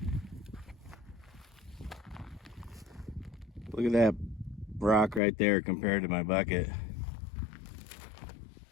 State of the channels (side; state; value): right; drops out; at 5.2 s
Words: Look at that rock right there compared to my bucket.